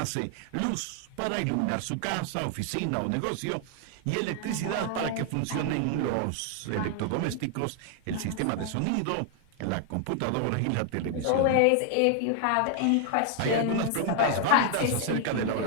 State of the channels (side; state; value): both; different; correlation 0.00